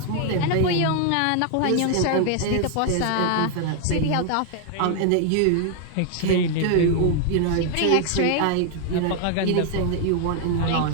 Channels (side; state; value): both; different; correlation 0.00